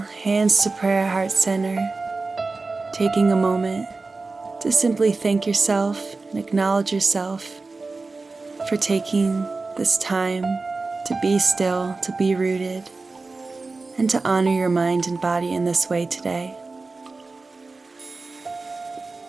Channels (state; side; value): quieter; left; 3.7 dB